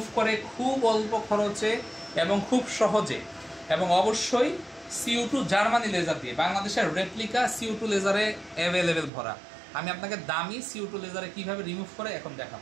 করে খুব অল্প খরচে এবং খুব সহজে, এবং অবশ্যই CO2 জার্মানি লেজার দিয়ে, বাংলাদেশের রেপ্লিকা CO2 লেজারে অ্যাভেলেবেল ভরা। আমি আপনাকে দামি CO2 লেজারে কিভাবে রিমুভ করে এখন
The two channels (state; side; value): drops out; left; at 9.1 s